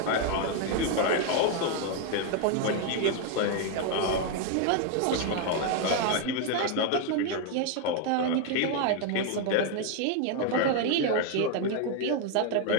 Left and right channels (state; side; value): different; both; correlation 0.01